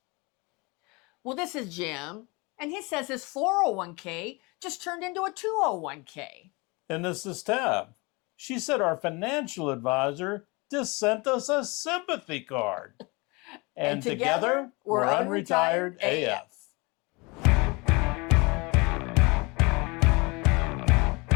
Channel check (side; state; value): right; quieter; 26.9 dB